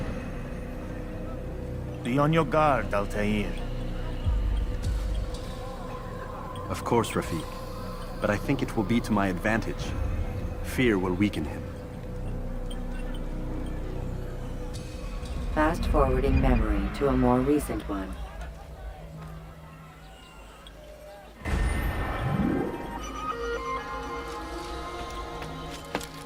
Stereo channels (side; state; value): both; identical; correlation 1.00